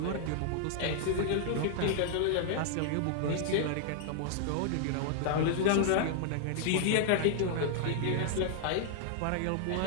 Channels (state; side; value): different; both; correlation -0.01